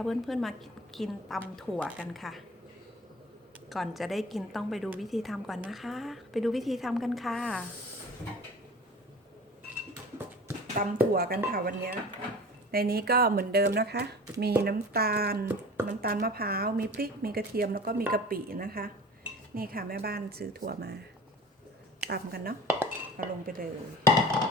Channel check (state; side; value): normal; both; correlation 0.40